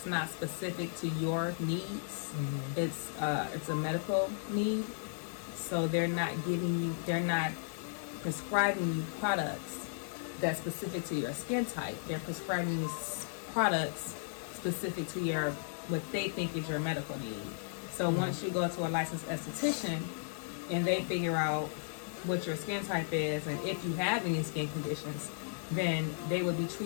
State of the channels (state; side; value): silent; right; digital silence